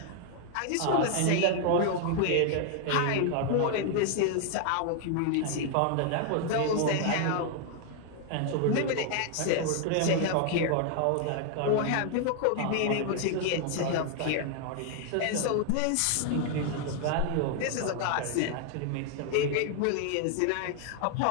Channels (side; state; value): both; different; correlation 0.00